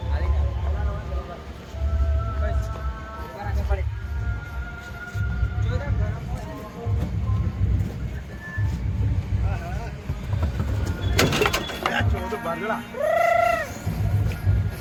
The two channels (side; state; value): both; identical; correlation 1.00